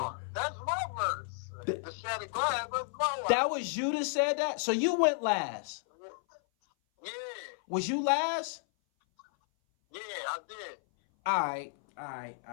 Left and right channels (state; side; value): silent; right; 56 dB below the other